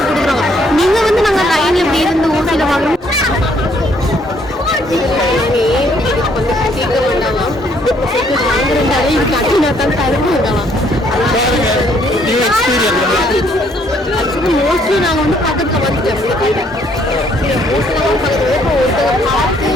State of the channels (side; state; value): both; normal; correlation 0.66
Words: கொடுக்குறாங்க. நீங்கள் வந்து நாங்கள் லைனில் இப்படி இருந்து ஊசியில் வாங்கணும். இதுக்கு வந்து கேட்க வேண்டாம், வாங்குறதாலே இது கட்டினா தான் தருவாங்கலாம். ஆக்சுவலி மோஸ்ட்லி நாங்கள் வந்து பக்கத்தில் வந்துட்டோம். மோஸ்ட்லி பக்கத்தில் இப்போ ஒருத்தங்க பார்த்து